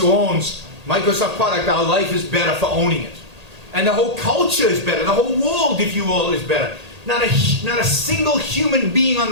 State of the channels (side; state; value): left; late; 1.8 ms